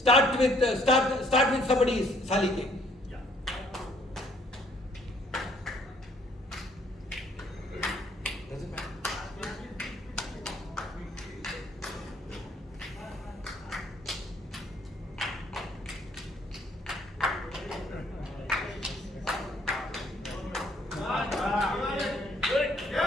with somebody, Salike. Doesn't matter.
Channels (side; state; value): both; normal; correlation 0.63